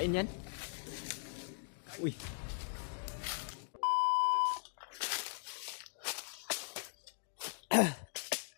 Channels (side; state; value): right; silent; digital silence